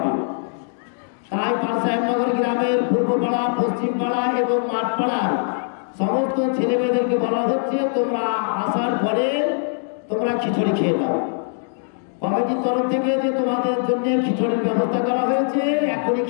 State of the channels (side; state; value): right; silent; 64 dB below the other